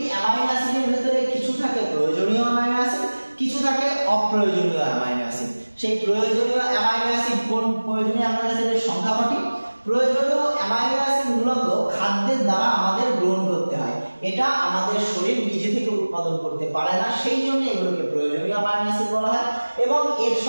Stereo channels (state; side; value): inverted; both; correlation -1.00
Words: অ্যামাইনো অ্যাসিডের ভিতরে কিছু থাকে প্রয়োজনীয় অ্যামাইনো অ্যাসিড, কিছু থাকে অপ্রয়োজনীয় অ্যামাইনো অ্যাসিড। সেই প্রয়োজনীয় অ্যামাইনো অ্যাসিড কোন প্রয়োজনীয় অ্যামাইনো অ্যাসিডের সংখ্যা কটি? প্রয়োজনীয় অ্যামাইনো অ্যাসিড মূলত খাদ্যের দ্বারা আমাদের গ্রহণ করতে হয়, এটা আমাদের শরীর নিজে থেকে উৎপাদন করতে পারে না, সেই জন্য এগুলোকে প্রয়োজনীয় অ্যামাইনো অ্যাসিড বলা হয়। এবং এর